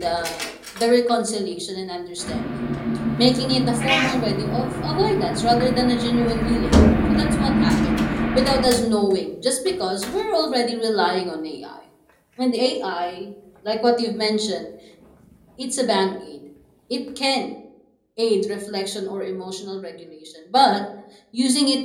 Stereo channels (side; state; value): both; identical; correlation 1.00